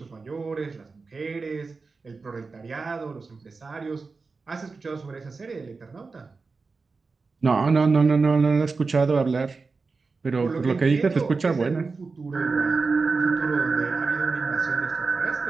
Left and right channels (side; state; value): left; quieter; 4.3 dB